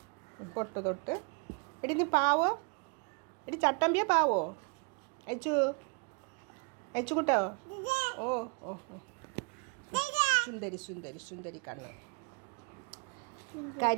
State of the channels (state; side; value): quieter; left; 34.1 dB